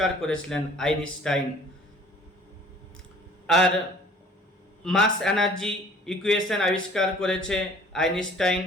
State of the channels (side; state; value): both; normal; correlation 0.52